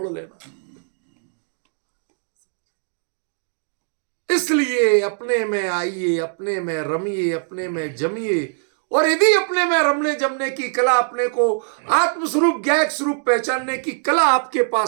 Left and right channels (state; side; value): silent; left; digital silence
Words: लेना। इसलिए अपने में आइए, अपने में रमिए, अपने में जमिए। और यदि अपने में रमने जमने की कला, अपने को आत्मस्वरूप ज्ञायक स्वरूप पहचानने की कला आपके